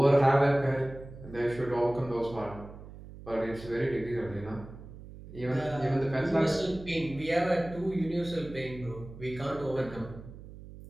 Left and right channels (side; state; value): right; noise; hum, 15 dB below the sound